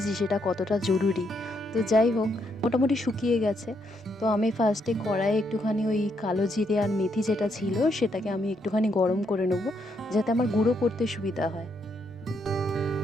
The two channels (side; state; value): both; normal; correlation 0.76